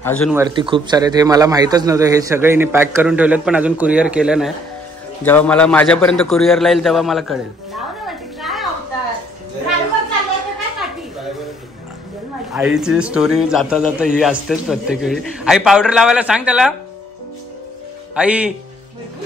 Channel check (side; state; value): both; normal; correlation 0.64